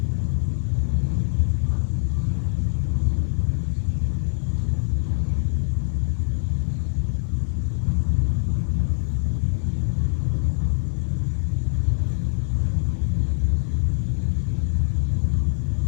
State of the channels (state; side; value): silent; right; 57 dB below the other